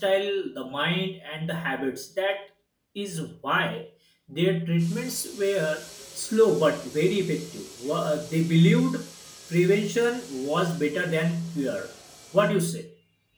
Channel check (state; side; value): identical; both; correlation 1.00